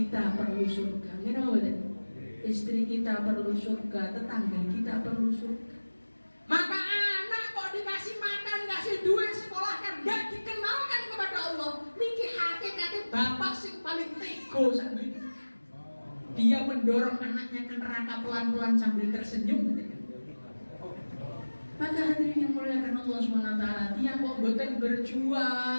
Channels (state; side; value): inverted; both; correlation -1.00